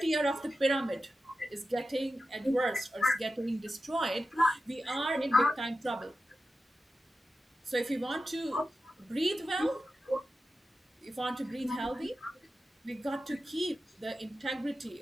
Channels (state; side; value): normal; both; correlation 0.92